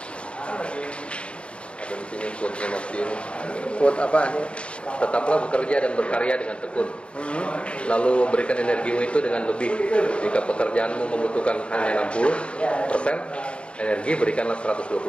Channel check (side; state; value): right; late; 0.058 ms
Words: Ada di sini quote-nya Mas Piu. Quote apa? Tetaplah bekerja dan berkarya dengan tekun. Lalu berikan energimu itu dengan lebih. Jika pekerjaanmu membutuhkan hanya 60%, energi berikanlah 120%.